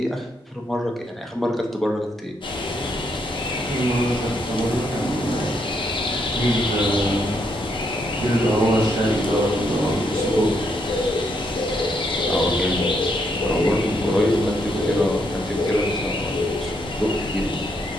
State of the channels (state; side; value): normal; both; correlation 0.75